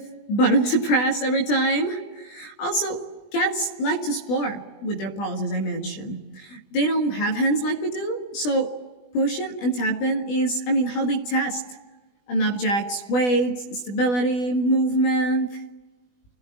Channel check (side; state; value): right; late; 20 ms